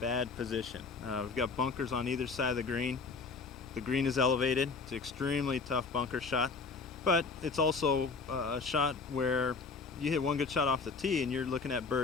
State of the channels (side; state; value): right; quieter; 4.5 dB